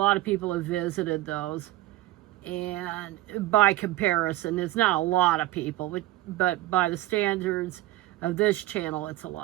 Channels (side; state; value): left; quieter; 16.4 dB